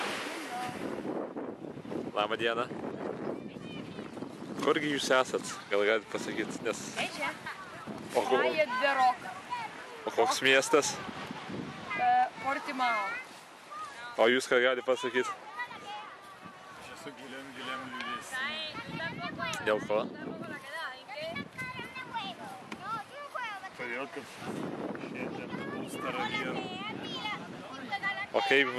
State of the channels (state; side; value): identical; both; correlation 1.00